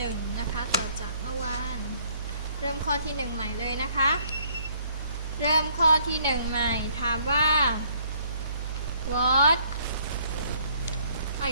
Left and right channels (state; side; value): inverted; both; correlation -0.63